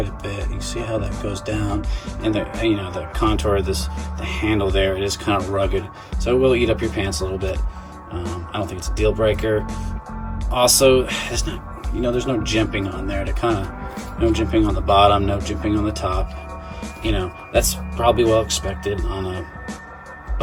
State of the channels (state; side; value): identical; both; correlation 1.00